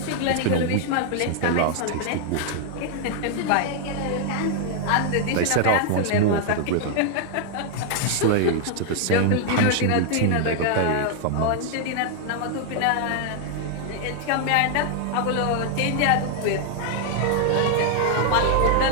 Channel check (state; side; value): different; both; correlation 0.00